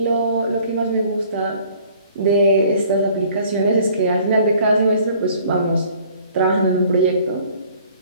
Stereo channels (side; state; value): both; inverted; correlation -0.55